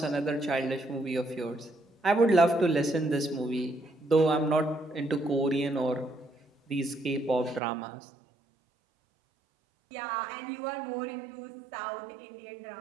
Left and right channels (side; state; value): left; drops out; at 7.6 s